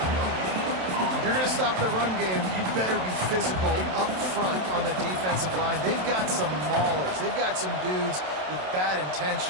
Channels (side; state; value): left; late; 27 ms